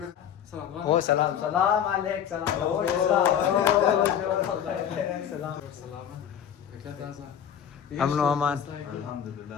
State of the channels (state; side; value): quieter; right; 9.1 dB